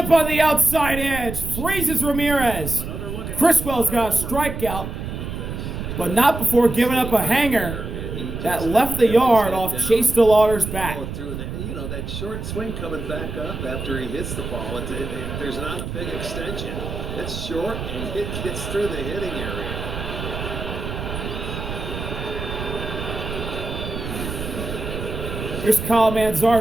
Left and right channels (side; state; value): right; noise; rumble, 6 dB below the sound